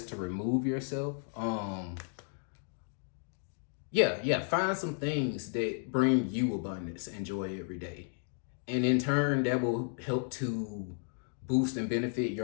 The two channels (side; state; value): right; silent; 55 dB below the other